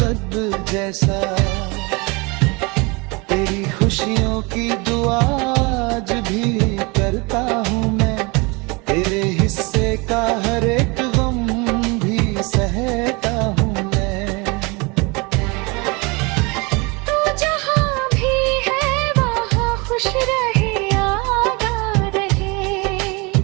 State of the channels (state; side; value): quieter; left; 27.7 dB